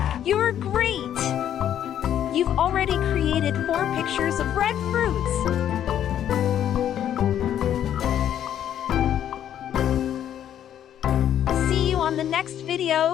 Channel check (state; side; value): quieter; right; 10.4 dB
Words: You're great! You've already created 4 pictures of red fruits. See you on the next